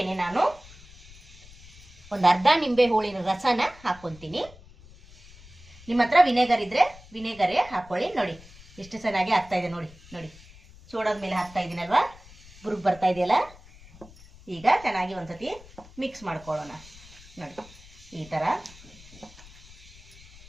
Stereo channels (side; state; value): left; noise; rumble, 21 dB below the sound